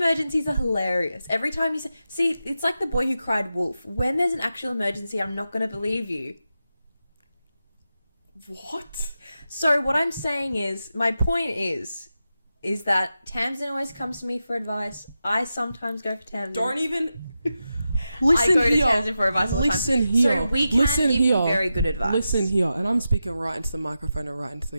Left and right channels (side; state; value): both; inverted; correlation -0.90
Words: are hilarious. Every time you see, it's like the boy who cried wolf. When there's an actual emergency, I'm not going to believe you. What? So what I'm saying is, my point is that Tamsin always comes to me for advice. I sometimes go for Tamsin. Don't even... Listen I go here. to Tamsin for advice all the time. Listen here. So we can give you very good advice. Listen here. And I'm speaking right into the microphone and right into